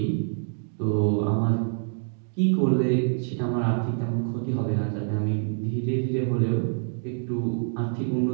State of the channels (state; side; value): silent; left; digital silence